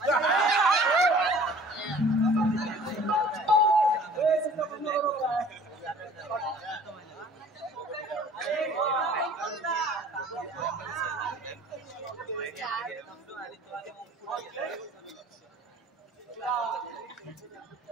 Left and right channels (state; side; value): normal; both; correlation 0.49